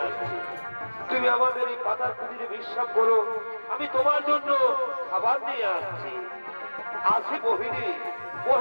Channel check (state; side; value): inverted; both; correlation -1.00